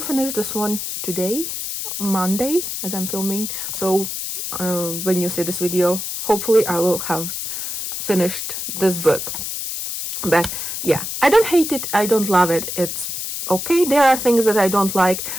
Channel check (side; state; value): left; noise; hiss, 5 dB below the sound